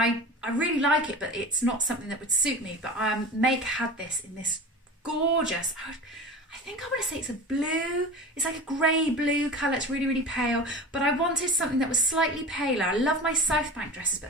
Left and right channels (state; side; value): normal; both; correlation 0.33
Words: I really like it, but it's not something that would suit me. But Make had this in this gorgeous, I think I want to say it's a blue, it's like a grey blue colour, it's really, really pale, but I wanted something that was slightly paler. I love my South Bank dresses, but